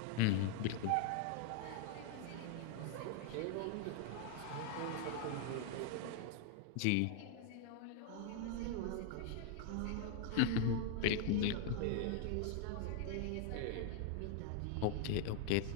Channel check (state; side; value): different; both; correlation 0.00